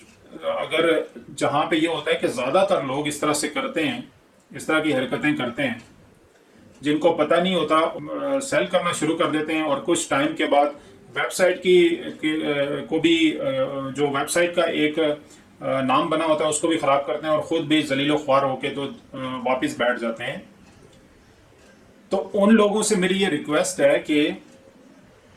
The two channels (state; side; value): identical; both; correlation 1.00